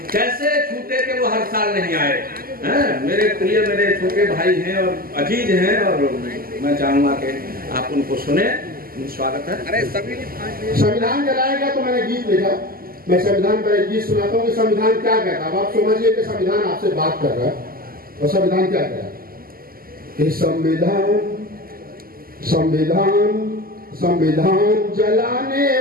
कैसे छूटे के वो हर साल नहीं आए हैं। मेरे प्रिय मेरे छोटे भाई हैं और अजीज हैं और मैं चाहूंगा कि आप उनको सुने। स्वागत है। अरे सभी संविधान जलाएगा तो मैंने गीत लिखा, मैं संविधान पर एक गीत सुनाता हूँ कि संविधान क्या कहता है। अब आप समझिए कि संविधान आपसे बात कर रहा है और संविधान क्या कह रहा है कि संविधान संविधान संविधान जलाने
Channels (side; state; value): left; late; 0.42 ms